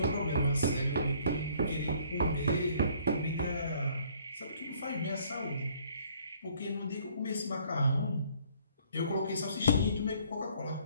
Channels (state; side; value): inverted; both; correlation -0.60